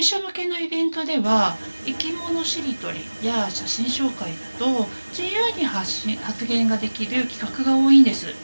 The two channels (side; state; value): both; inverted; correlation -1.00